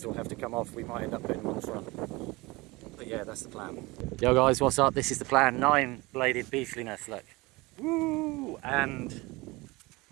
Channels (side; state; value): left; quieter; 23.0 dB